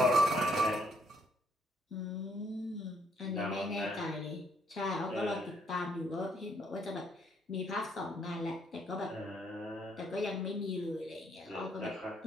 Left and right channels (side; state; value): both; normal; correlation 0.70